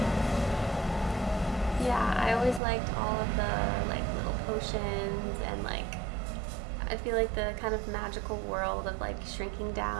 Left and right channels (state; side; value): drops out; left; at 2.6 s